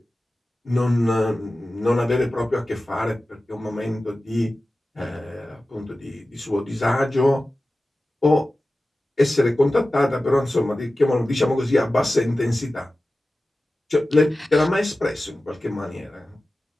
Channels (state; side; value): normal; both; correlation 0.95